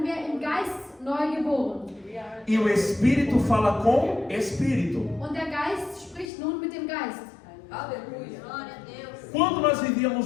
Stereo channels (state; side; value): drops out; right; at 6.3 s